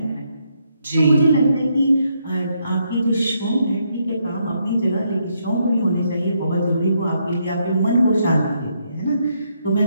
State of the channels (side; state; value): both; inverted; correlation -0.76